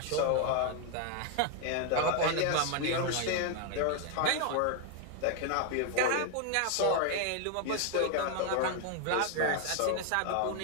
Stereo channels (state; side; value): different; both; correlation 0.00